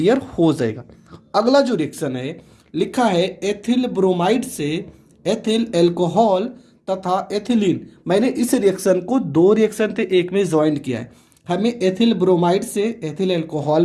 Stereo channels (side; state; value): both; identical; correlation 1.00